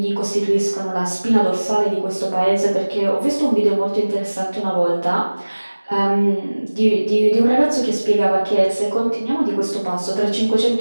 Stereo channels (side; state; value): both; inverted; correlation -1.00